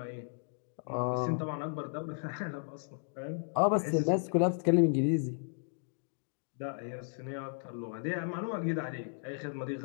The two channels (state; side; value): silent; right; digital silence